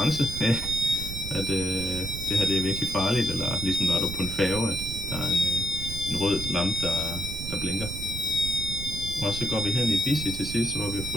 At det her det er virkelig farligt, eller ligesom når du er på en færge, at der er en rød lampe, der blinker. Og så går vi hen i Busy til sidst, hvor vi har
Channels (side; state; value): right; noise; rumble, 7 dB below the sound